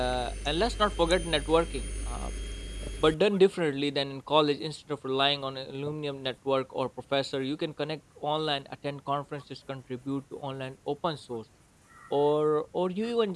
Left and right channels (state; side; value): identical; both; correlation 1.00